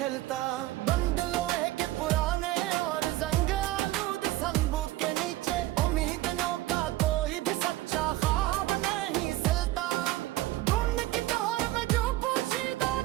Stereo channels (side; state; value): left; quieter; 16.6 dB